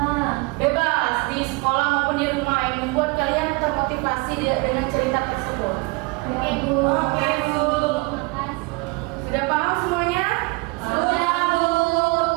Bebas di sekolah maupun di rumah yang membuat kalian termotivasi dengan cerita tersebut. Oke, Bu. Oke, Bu. Makasih. Sudah paham semuanya? Sudah, Bu.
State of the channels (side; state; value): left; quieter; 27.6 dB